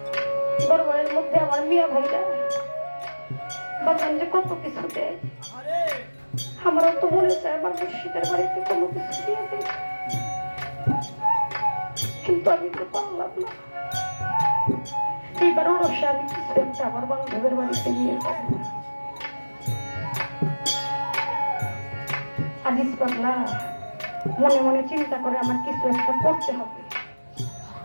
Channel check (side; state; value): both; inverted; correlation -1.00